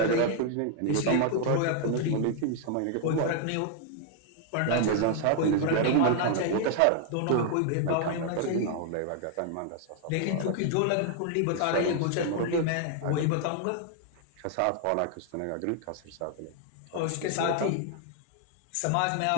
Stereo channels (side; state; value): both; different; correlation 0.00